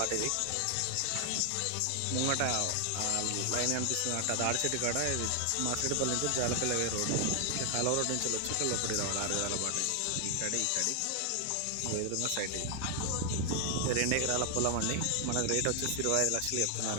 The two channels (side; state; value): both; different; correlation 0.00